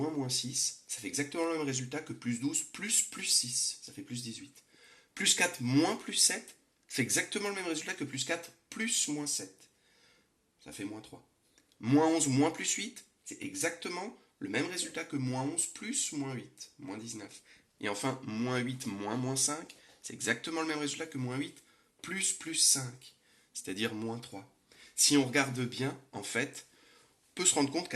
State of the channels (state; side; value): identical; both; correlation 1.00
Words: moins 6, ça fait exactement le même résultat que plus 12 plus plus 6. Ça fait plus 18. Plus 4 moins plus 7 fait exactement le même résultat que plus 4 plus moins 7. Ça fait moins 3. Moins 11 moins plus 8, c'est exactement le même résultat que moins 11 plus moins 8, moins 19. Et enfin, moins 8 moins moins 5, c'est exactement le même résultat que moins 8 plus plus 5, c'est-à-dire moins 3. Si on regarde bien, en fait, on peut se rendre compte